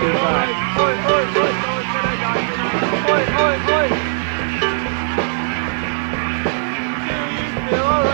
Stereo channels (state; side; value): silent; left; 55 dB below the other